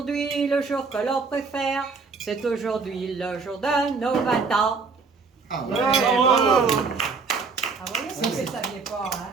le jour que l'on préfère, c'est aujourd'hui le jour de nos 20 ans. Ah ouais. Ah, vous voyez, si vous ne saviez pas, hein.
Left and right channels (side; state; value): left; quieter; 4.6 dB